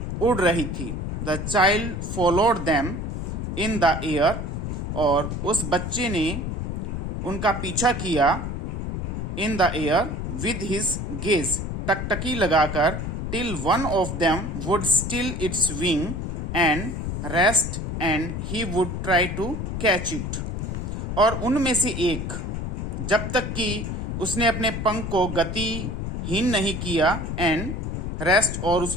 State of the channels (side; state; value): left; noise; rumble, 4 dB below the sound